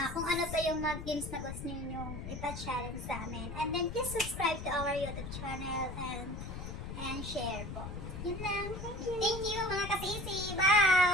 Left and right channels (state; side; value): noise; left; rumble, 8 dB below the sound